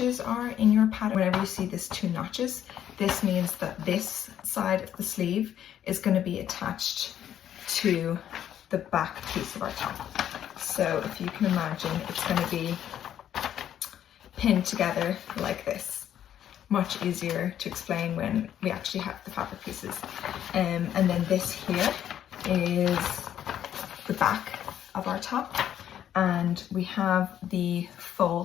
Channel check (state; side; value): quieter; right; 10.4 dB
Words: are in your pattern. Whenever you see this 2 notches, this means that this side of the sleeve is going to be attached to the back piece of our top. So if you can imagine, it's going to be pinned together like this. Much easier to explain when we actually have the fabric pieces. And then this here is the back of our top, and we have the